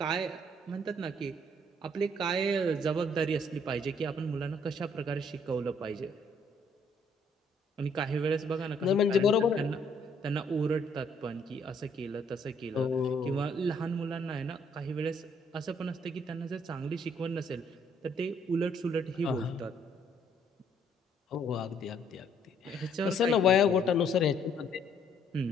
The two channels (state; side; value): normal; both; correlation 0.66